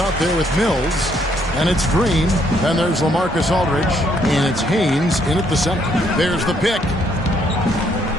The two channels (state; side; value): normal; both; correlation 0.70